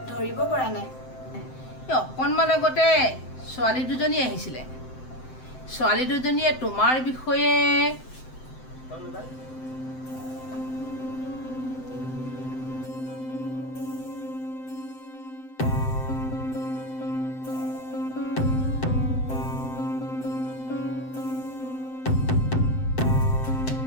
ধৰিব পৰা নাই এই অকণমান আগতে ছোৱালী দুজনী আহিছিলে ছোৱালী দুজনীয়ে তোমাৰ বিষয়ে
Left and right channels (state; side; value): late; right; 7.8 ms